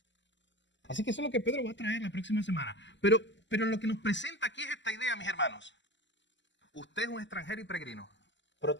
Así que eso es lo que Pedro va a traer la próxima semana. Pero lo que nos presenta aquí es esta idea, mis hermanos. Usted es un extranjero y peregrino, pero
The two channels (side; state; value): right; late; 0.53 ms